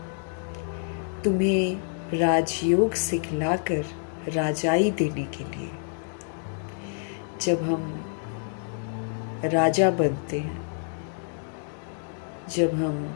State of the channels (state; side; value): silent; right; 60 dB below the other